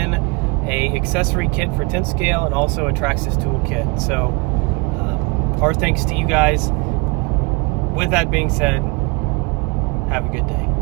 a accessory kit for 10 scale and also a Traxxas tool kit. So our thanks to you guys. With that being said, have a good day.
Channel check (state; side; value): quieter; left; 29.1 dB